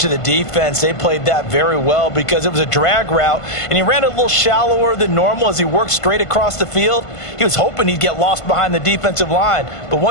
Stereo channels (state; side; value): late; right; 1.5 ms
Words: the defense. They played that very well because it was a drag route, and he ran a little shallower than normal as he worked straight across the field. He was hoping he'd get lost behind the defensive line, but